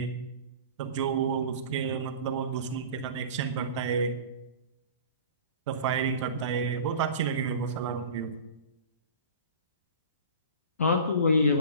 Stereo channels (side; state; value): both; inverted; correlation -0.38